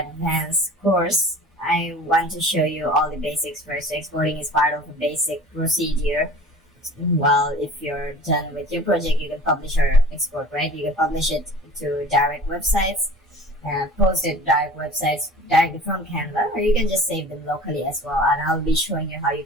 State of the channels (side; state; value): both; normal; correlation 0.42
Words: course, I want to show you all the basics first. Exporting is part of a basic procedure. Well, if you're done with your project, you can publish or export, right? You can publish it to direct websites, post it direct websites directly from Canva, or you can just save them locally as well. And I'll be showing you how you